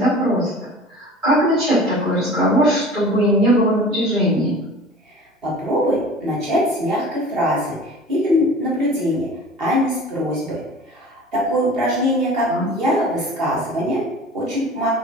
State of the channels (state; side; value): normal; both; correlation 0.41